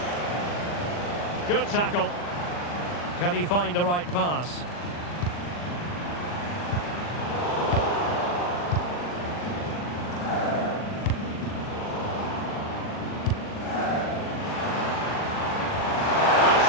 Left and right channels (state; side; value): late; right; 40 ms